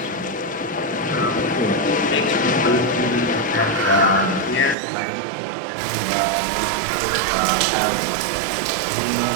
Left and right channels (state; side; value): drops out; left; at 4.8 s